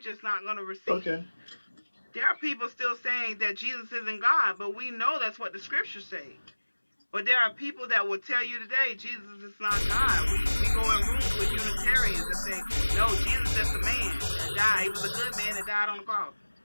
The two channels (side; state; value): both; inverted; correlation -1.00